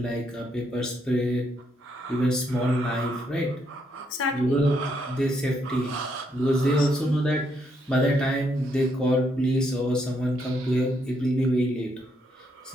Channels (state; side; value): normal; both; correlation 0.75